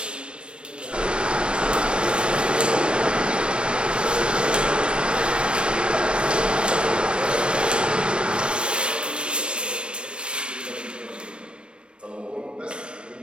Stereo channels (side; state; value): left; late; 0.057 ms